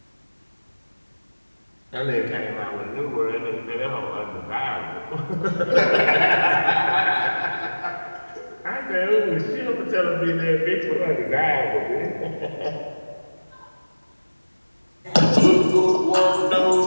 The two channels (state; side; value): inverted; both; correlation -1.00